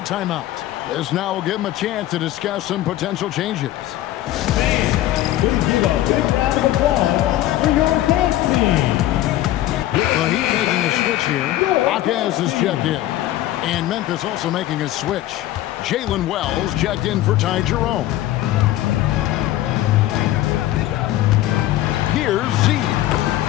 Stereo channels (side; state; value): right; quieter; 14.4 dB